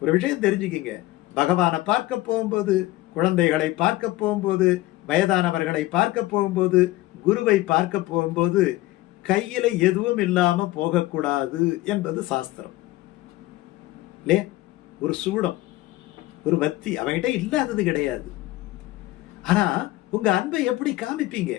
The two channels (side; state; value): right; quieter; 17.6 dB